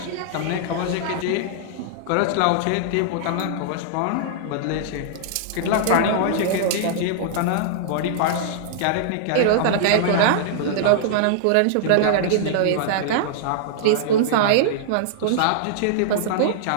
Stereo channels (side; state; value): both; different; correlation -0.01